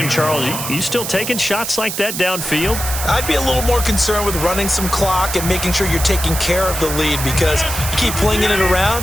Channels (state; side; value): noise; right; hiss, 5 dB below the sound